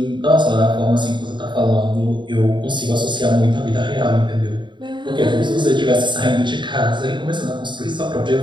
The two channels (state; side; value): late; left; 0.23 ms